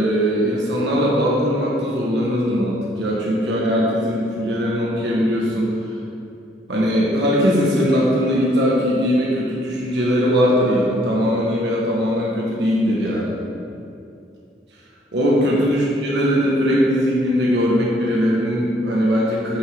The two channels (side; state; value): both; normal; correlation 0.63